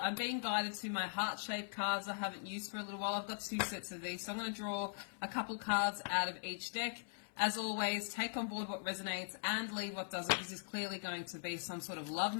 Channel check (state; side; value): silent; right; 51 dB below the other